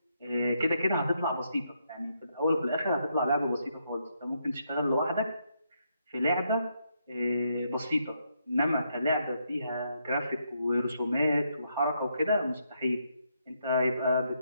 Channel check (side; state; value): both; inverted; correlation -0.78